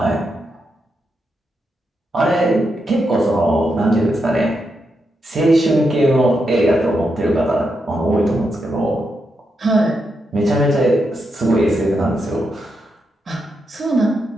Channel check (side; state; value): both; normal; correlation 0.84